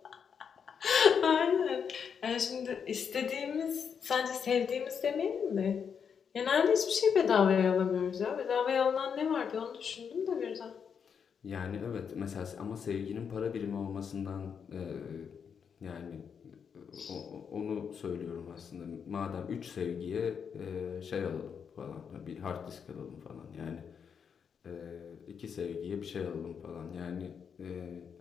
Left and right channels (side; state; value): right; quieter; 6.9 dB